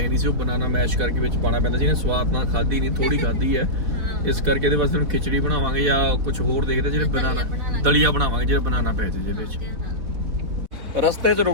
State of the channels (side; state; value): left; late; 4.0 ms